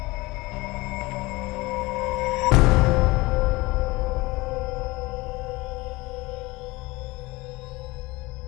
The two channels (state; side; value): quieter; right; 21.9 dB